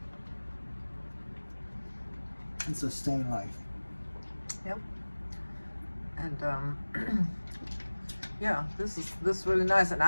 and sustain life. Yep. And yeah, this is really nice. And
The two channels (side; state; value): both; inverted; correlation -1.00